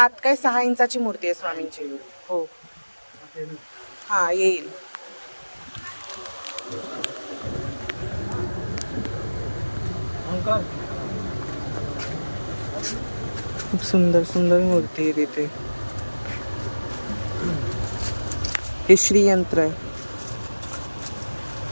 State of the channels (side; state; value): both; inverted; correlation -1.00